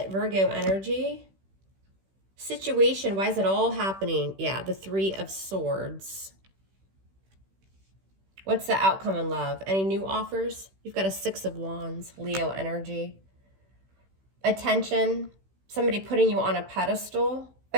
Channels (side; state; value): left; late; 16 ms